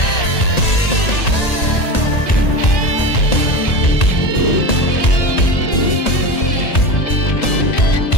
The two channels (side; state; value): right; late; 1.8 ms